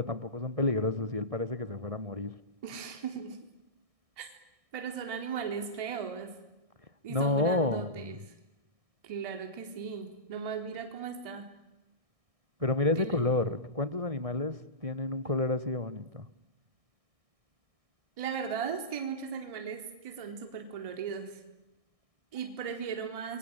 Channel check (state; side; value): late; left; 1.6 ms